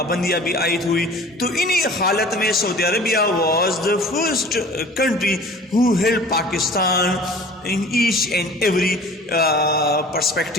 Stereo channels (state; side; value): normal; both; correlation 0.45